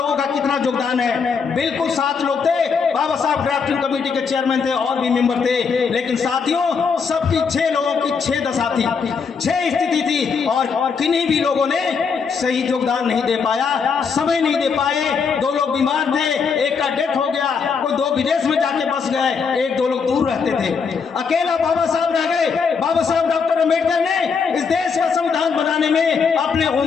का कितना योगदान है। बिल्कुल 7 लोग थे, बाबा साहब ड्राफ्टिंग कमेटी के चेयरमैन थे, और भी मेंबर थे, लेकिन साथियों सबकी 6 लोगों की 6 दशा थी, 6 स्थिति थी, और किन्हीं भी लोगों ने सही योगदान नहीं दे पाया, समय नहीं दे पाए। 2 लोग बीमार थे, एक का डेथ हो गया, कोई 2 विदेश में जाके बस गए, 1-2 लोग दूर रहते थे, अकेला बाबा साहब रह गए। बाबा साहब डॉक्टर अम्बेडकर ने इस देश का संविधान बनाने में अपने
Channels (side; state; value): right; quieter; 5.7 dB